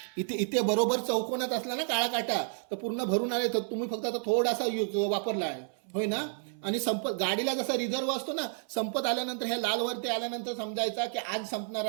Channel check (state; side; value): silent; left; 57 dB below the other